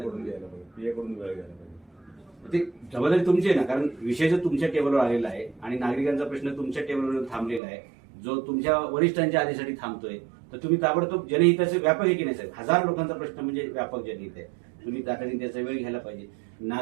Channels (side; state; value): left; drops out; at 7.6 s